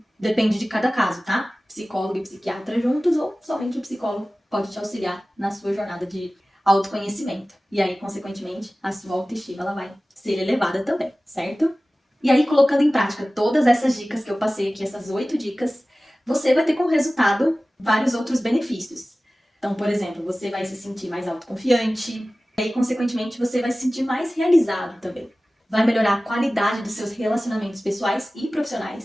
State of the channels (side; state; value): both; normal; correlation 0.97